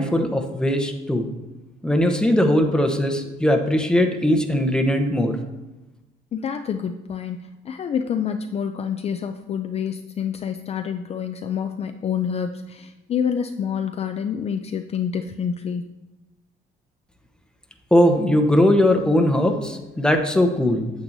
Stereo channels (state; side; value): normal; both; correlation 0.76